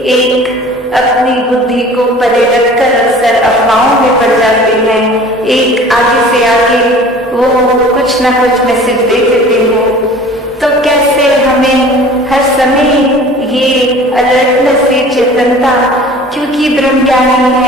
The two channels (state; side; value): normal; both; correlation 0.45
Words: एक अपनी बुद्धि को परे रखकर अक्सर अफवाहों में पड़ जाते हैं। एक आगे से आगे वो कुछ ना कुछ मैसेज दे देते हैं। तो कैसे हमें हर समय ये अलर्टनेस, ये चेतनता, क्योंकि ब्रह्मज्ञानी